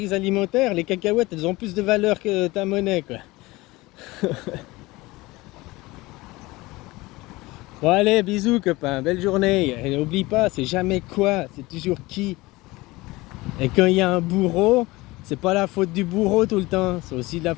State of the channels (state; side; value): quieter; right; 21.0 dB